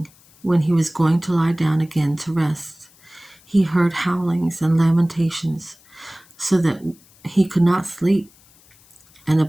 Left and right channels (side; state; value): left; noise; hiss, 28 dB below the sound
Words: when he was going to lie down again to rest, he heard howlings and lamentations, so that he could not sleep. And